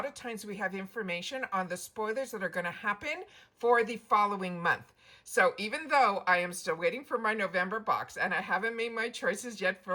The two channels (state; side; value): identical; both; correlation 1.00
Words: of times we have information on the spoilers that are going to happen for the following month. So even though I am still waiting for my November box and I haven't made my choices yet